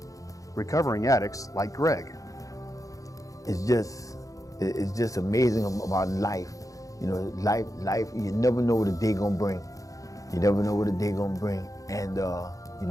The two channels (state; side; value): late; right; 0.16 ms